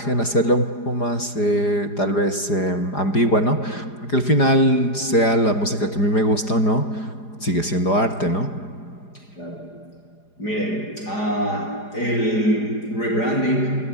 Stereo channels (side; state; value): right; late; 4.9 ms